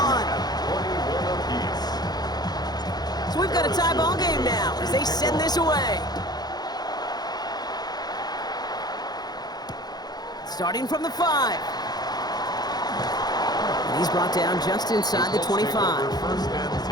So we've got a tie ball game now as they send this away. Starting from the 5. And he's brought down just inside the 25. First and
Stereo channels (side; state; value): right; late; 0.19 ms